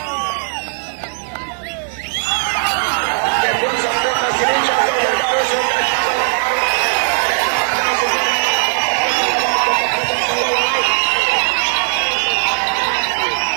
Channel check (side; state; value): left; silent; 65 dB below the other